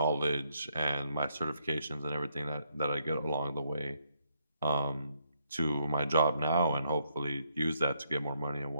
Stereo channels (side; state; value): both; inverted; correlation -0.74